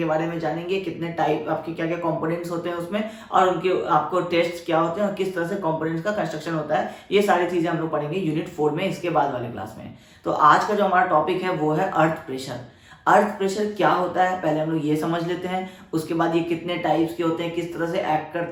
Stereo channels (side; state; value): both; identical; correlation 1.00